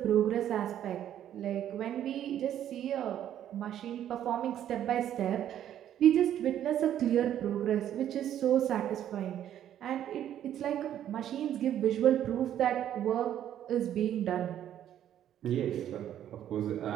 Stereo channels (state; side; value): quieter; left; 10.8 dB